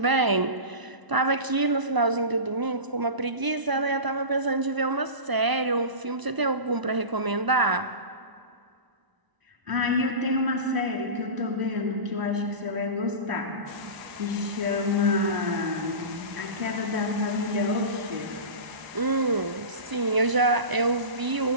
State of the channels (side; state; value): left; late; 1.0 ms